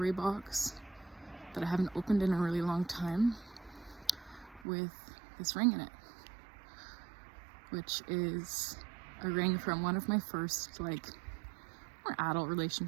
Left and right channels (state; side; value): drops out; left; at 4.7 s